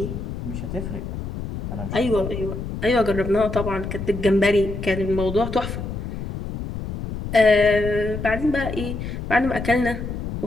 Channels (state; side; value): noise; left; rumble, 6 dB below the sound